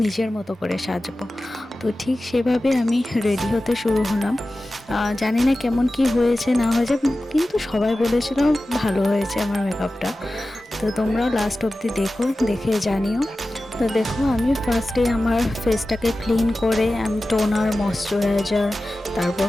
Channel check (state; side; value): normal; both; correlation 0.95